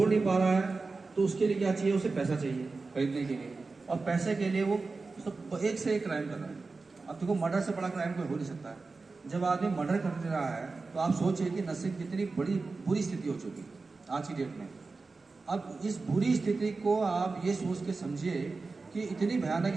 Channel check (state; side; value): quieter; left; 3.9 dB